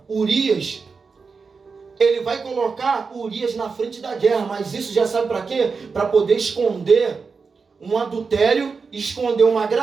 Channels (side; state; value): left; quieter; 4.9 dB